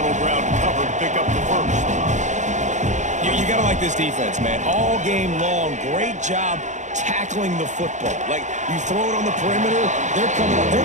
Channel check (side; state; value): left; late; 0.35 ms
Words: ground covered to pick up the 1st. You got to like this defense, man. All game long, great job tackling the football. Like, you throw it on the perimeter, they're coming up. They're